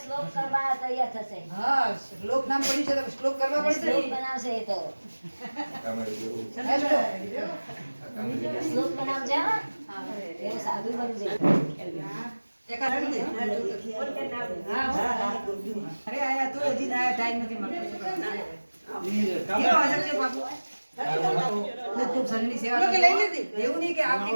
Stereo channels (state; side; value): inverted; both; correlation -1.00